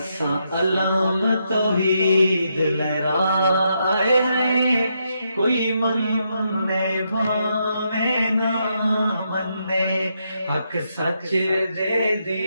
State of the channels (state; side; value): inverted; both; correlation -0.80